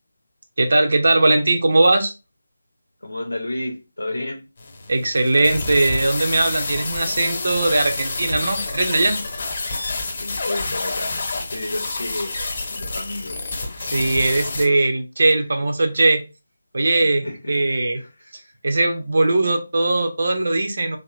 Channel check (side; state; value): both; inverted; correlation -0.94